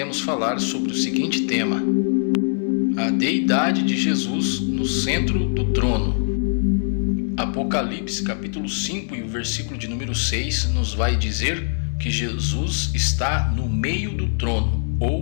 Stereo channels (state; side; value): silent; right; digital silence